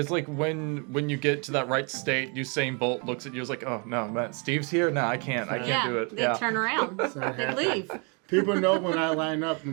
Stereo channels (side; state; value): left; quieter; 34.2 dB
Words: like when you get to that right state, Usain Bolt looks at you, is like, oh no, man, Steve's here. No, I can't do it. They turn around. not They happening. leave. People know when I line up,